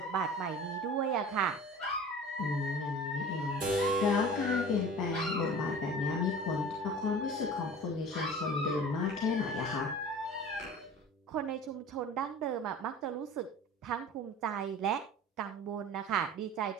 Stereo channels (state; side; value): normal; both; correlation 0.40